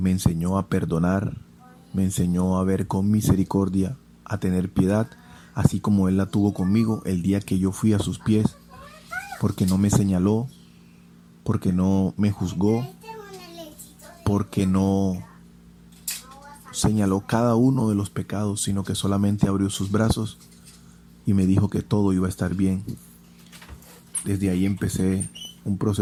enseñó a perdonar, me enseñó a ver con misericordia, a tener piedad, así como Él la tuvo conmigo el día que yo fui a sus pies, porque no me señaló, porque no me juzgó, porque no señaló cada uno de los pecados, sino que solamente abrió sus brazos y me dijo que todo iba a estar bien. Desde ahí empecé un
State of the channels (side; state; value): both; identical; correlation 1.00